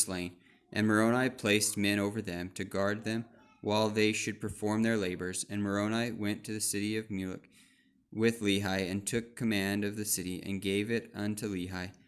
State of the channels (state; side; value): identical; both; correlation 1.00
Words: And Moroni placed men over them to guard them while they should perform their labors. And Moroni went to the city of Mulek with Lehi, and took command of the city, and gave it unto Lehi.